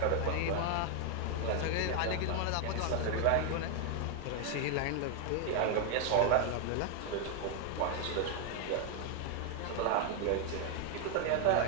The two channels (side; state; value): both; different; correlation 0.00